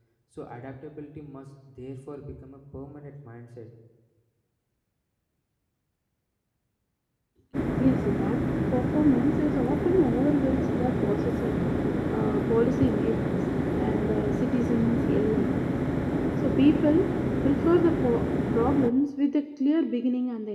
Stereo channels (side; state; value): both; identical; correlation 1.00